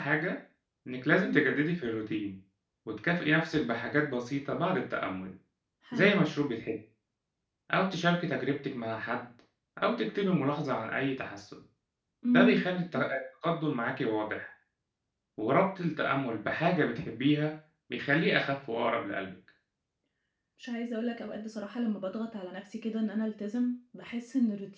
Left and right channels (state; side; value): identical; both; correlation 1.00